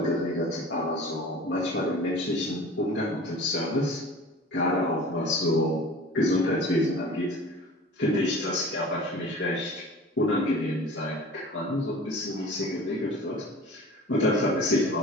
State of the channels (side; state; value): both; normal; correlation 0.41